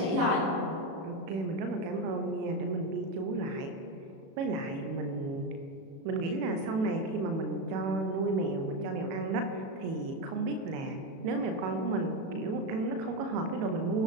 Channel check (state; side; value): late; left; 36 ms